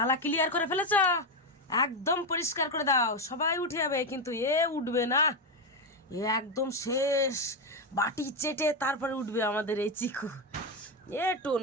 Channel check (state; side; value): normal; both; correlation 0.09